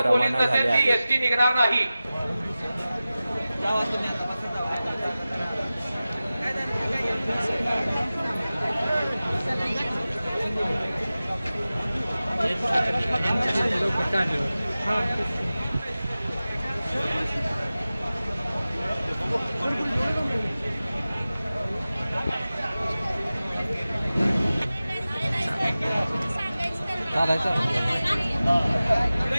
रवाना झाले आहेत। एसटी निघणार नाही।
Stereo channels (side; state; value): both; inverted; correlation -0.96